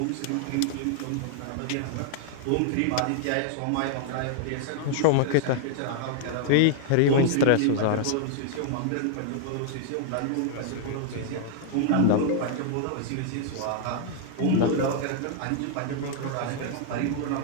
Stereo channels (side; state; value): both; different; correlation 0.00